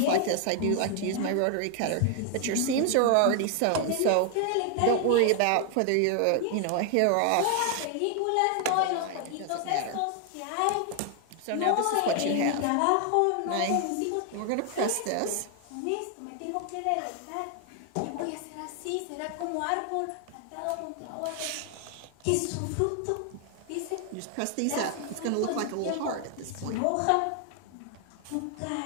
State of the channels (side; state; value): both; different; correlation 0.00